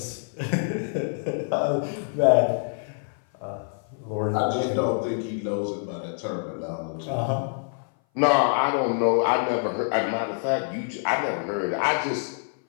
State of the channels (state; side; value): silent; right; 58 dB below the other